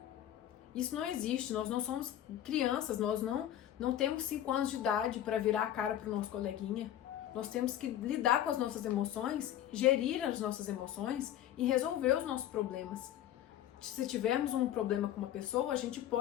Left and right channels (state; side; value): quieter; right; 11.8 dB